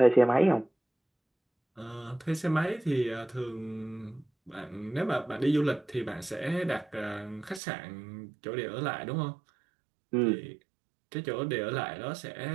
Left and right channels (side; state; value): left; drops out; at 7.6 s